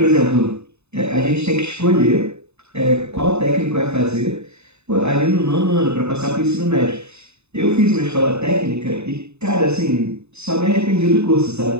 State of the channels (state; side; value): late; left; 0.81 ms